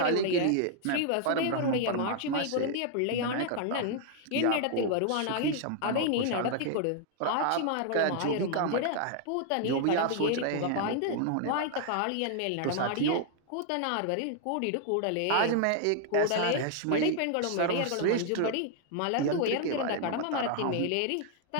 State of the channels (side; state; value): both; different; correlation 0.00